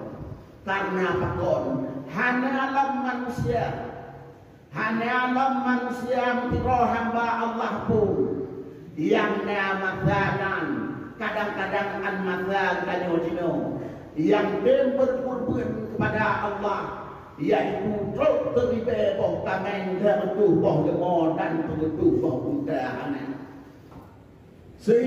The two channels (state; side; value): identical; both; correlation 1.00